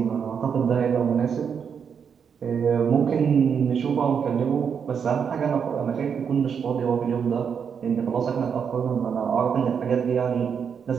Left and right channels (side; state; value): left; quieter; 7.0 dB